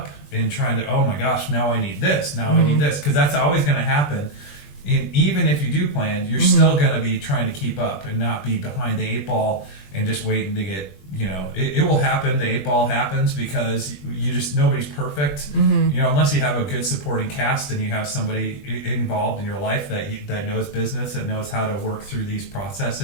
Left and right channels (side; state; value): right; late; 20 ms